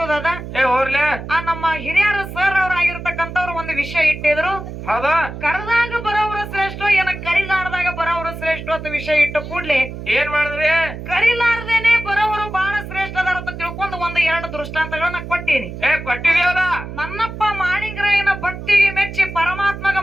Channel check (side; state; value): right; noise; hum, 10 dB below the sound